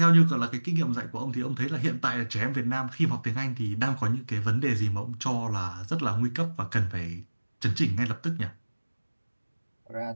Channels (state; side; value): inverted; both; correlation -1.00